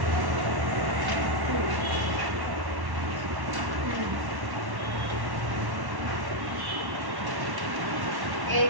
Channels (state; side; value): late; left; 1.1 ms